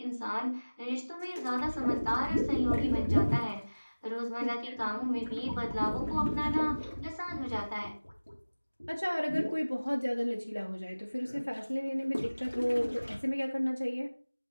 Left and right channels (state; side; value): inverted; both; correlation -1.00